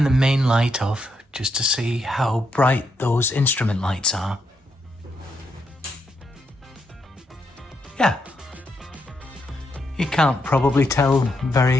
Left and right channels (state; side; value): normal; both; correlation 0.80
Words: the main light off just to see how bright those instrument lights are. Yeah, you can't probably tell